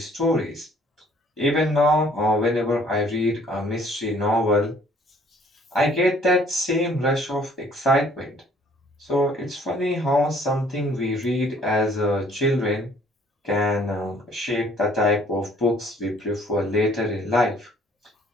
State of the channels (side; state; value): both; normal; correlation 0.59